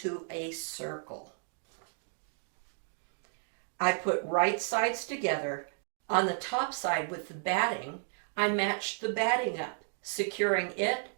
a circle. I put right sides together. On the top side with the batting, I matched the batting up, securing it,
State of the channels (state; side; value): silent; left; 56 dB below the other